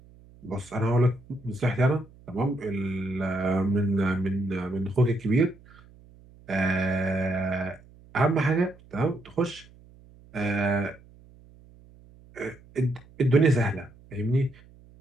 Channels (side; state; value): right; noise; hum, 25 dB below the sound